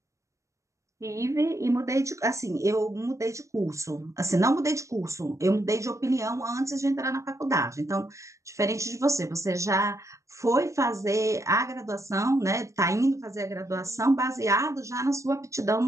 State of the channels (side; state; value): left; late; 0.15 ms